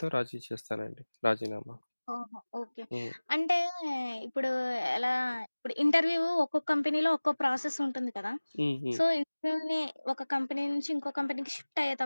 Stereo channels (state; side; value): inverted; both; correlation -1.00